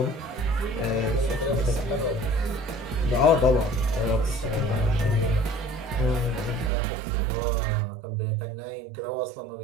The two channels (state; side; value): drops out; left; at 6.7 s